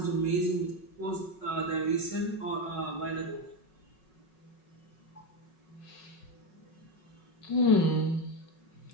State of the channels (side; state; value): right; late; 5.4 ms